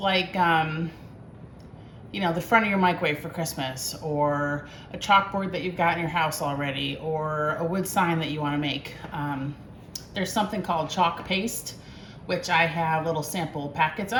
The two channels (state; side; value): identical; both; correlation 1.00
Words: you know, the front of your microwave for Christmas, or a chalkboard that you've got in your house already, or a wood sign that you want to make, there's something called chalk paste, which I have little sample packets